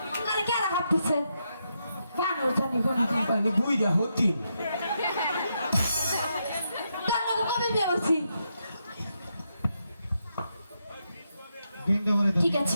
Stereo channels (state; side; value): inverted; both; correlation -0.82